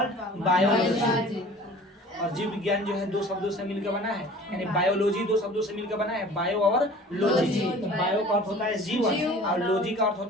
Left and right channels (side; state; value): both; normal; correlation 0.45